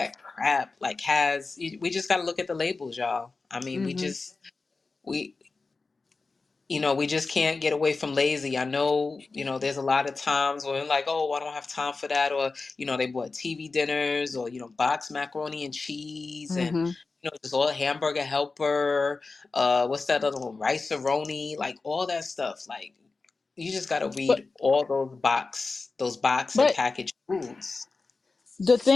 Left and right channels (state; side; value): quieter; right; 3.9 dB